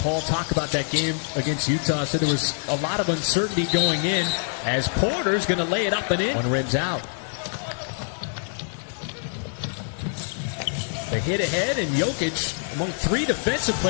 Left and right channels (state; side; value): silent; right; 62 dB below the other